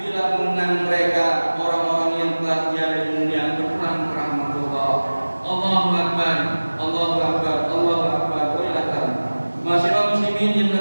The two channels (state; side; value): inverted; both; correlation -1.00